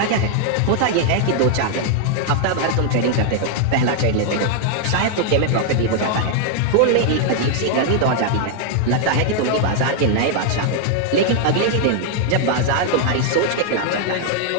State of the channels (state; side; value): different; both; correlation 0.00